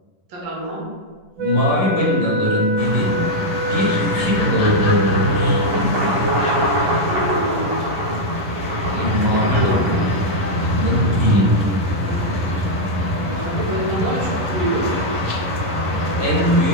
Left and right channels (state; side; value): late; left; 11 ms